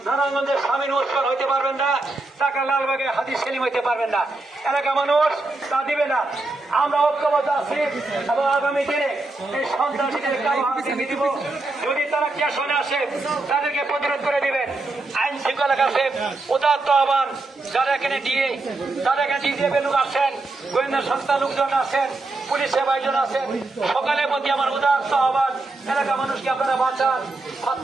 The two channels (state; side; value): quieter; left; 3.1 dB